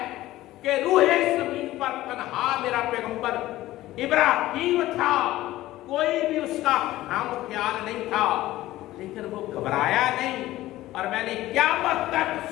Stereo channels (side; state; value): right; quieter; 16.0 dB